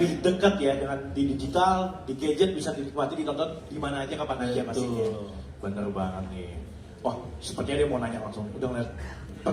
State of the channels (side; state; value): both; identical; correlation 1.00